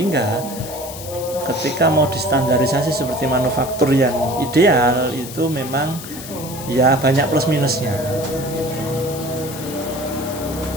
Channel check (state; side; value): noise; left; hiss, 12 dB below the sound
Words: ketika mau distandarisasi seperti manufaktur yang ideal itu memang ya banyak plus minusnya.